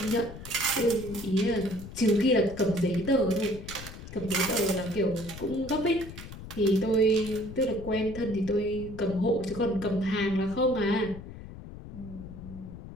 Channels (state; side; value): noise; left; rumble, 13 dB below the sound